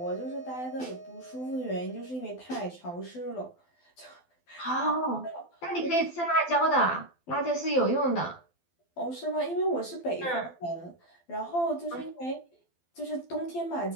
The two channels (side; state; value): right; late; 12 ms